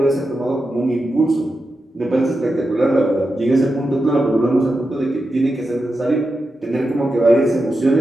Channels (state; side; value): normal; both; correlation 0.89